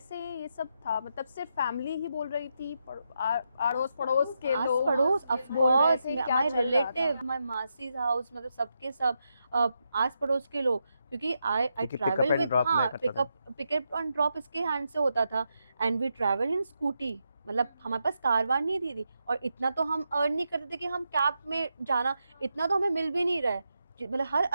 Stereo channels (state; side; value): inverted; both; correlation -0.84